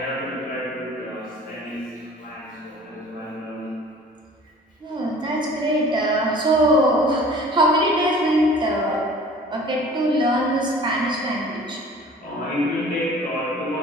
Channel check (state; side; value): normal; both; correlation 0.47